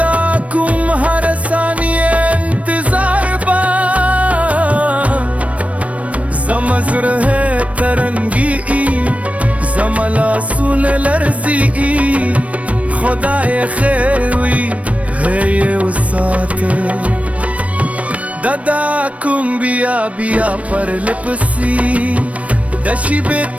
کم هر ثانیه انتظار با زمزره ترنگی زملاسون لرزی خدای خیروی هی و ساته دادا کوم بیا بیا پر لپسی دشی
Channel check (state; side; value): late; left; 0.065 ms